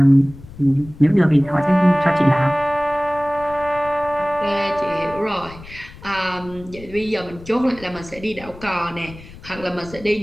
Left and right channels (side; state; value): left; noise; rumble, 18 dB below the sound